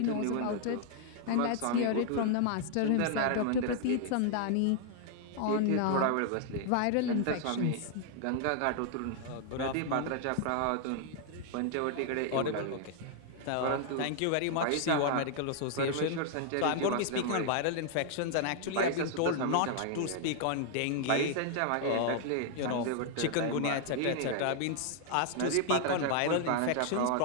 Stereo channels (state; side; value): different; both; correlation 0.00